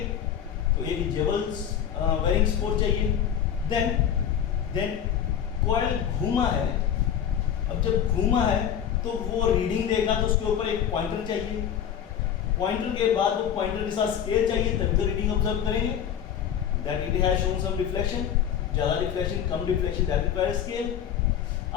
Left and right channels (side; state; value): right; quieter; 9.0 dB